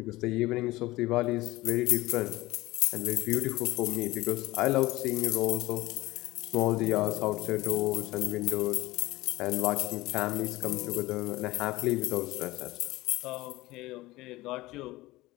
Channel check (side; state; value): right; quieter; 19.1 dB